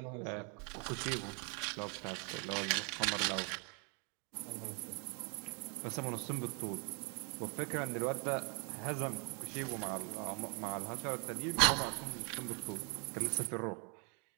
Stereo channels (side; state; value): left; quieter; 37.1 dB